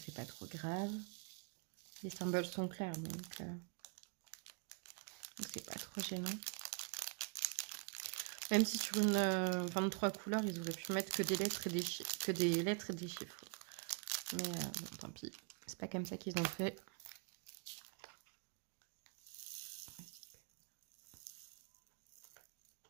c'est pas trop grave. Les symboles sont clairs, donc c'est pas trop gênant. Même si sur une 23 couleurs, ils auraient pu mettre que des lettres et des chiffres. Mais bon, tant pis. C'est pas comme ça qu'ils ont fait.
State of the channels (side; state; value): left; quieter; 38.4 dB